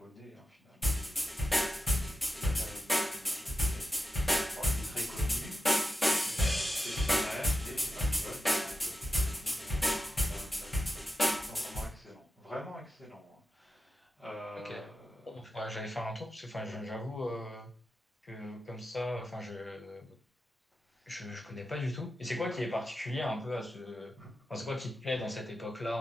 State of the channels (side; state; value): both; normal; correlation 0.90